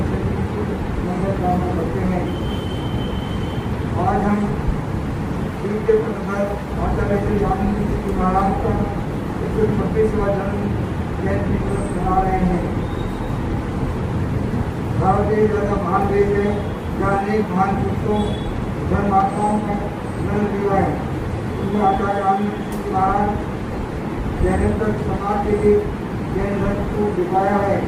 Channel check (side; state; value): both; identical; correlation 1.00